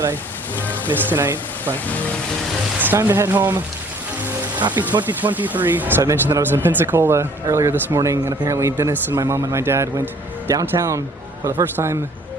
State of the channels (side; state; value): both; normal; correlation 0.56